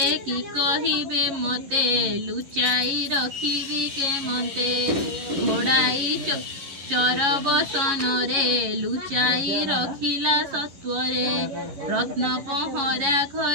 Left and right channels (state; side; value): late; left; 11 ms